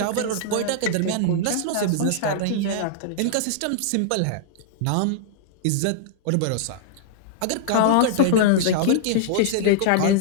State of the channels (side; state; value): both; different; correlation -0.01